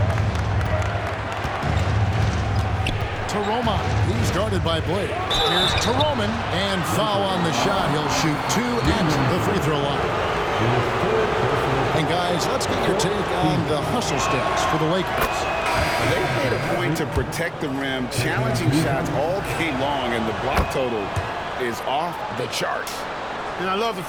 Taroma. He's guarded by Blake. Here's Taroman. And foul on the shot. He'll shoot 2 at the free throw line. And guys, let's get your take on the hustle stats for the Lakers. They made a point to protect the rim, challenging shots all game long, and the block total is off the charts. And I love the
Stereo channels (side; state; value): both; identical; correlation 1.00